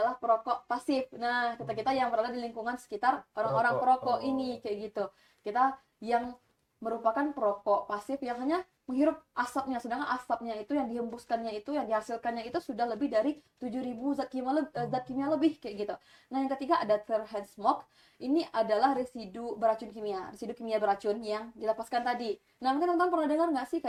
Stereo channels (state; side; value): identical; both; correlation 1.00